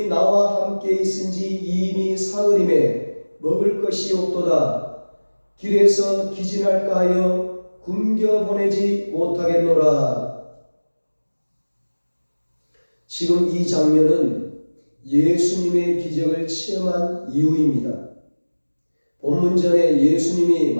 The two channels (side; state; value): both; inverted; correlation -1.00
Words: 나와 함께 있은지 이미 사흘임에 먹을 것이 없도다. 길에서 기진할까 하여 굶겨 보내지 못하겠노라. 지금 이 장면은 예수님의 기적을 체험한 이후입니다. 본문전에 예수님이